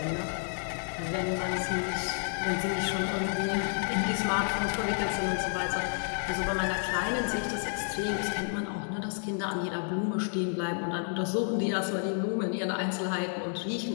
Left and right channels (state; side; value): silent; right; 57 dB below the other